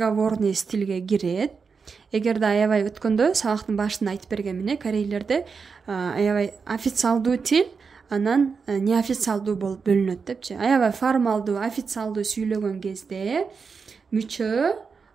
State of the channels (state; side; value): quieter; left; 5.3 dB